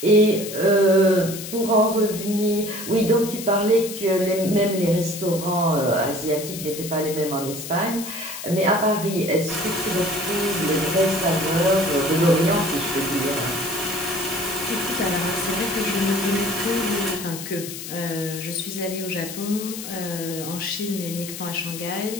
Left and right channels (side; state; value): left; noise; hiss, 9 dB below the sound